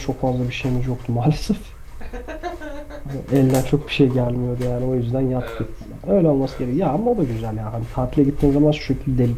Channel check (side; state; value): both; identical; correlation 1.00